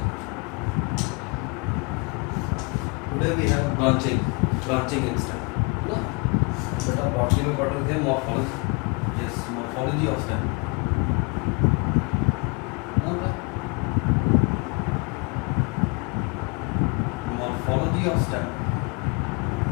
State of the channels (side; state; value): right; quieter; 31.8 dB